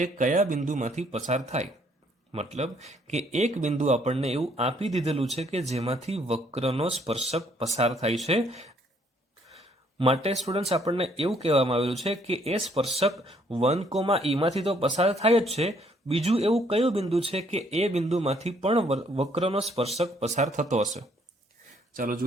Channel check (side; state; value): both; normal; correlation 0.66